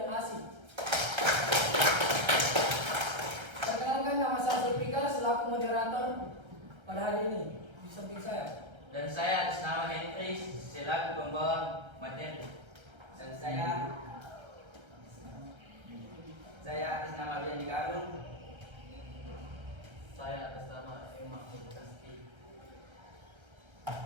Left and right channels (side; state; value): left; late; 1.3 ms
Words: asik. Perkenalkan, nama saya Zulfikar selaku moderator pada hari ini. Di samping saya. Dan saya atas nama Henry selaku pembawa materi. Dan saya atas nama Bian Agung. Saya atas nama Emma Kasti.